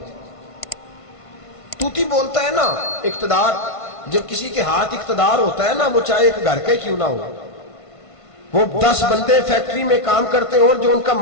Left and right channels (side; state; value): right; late; 1.5 ms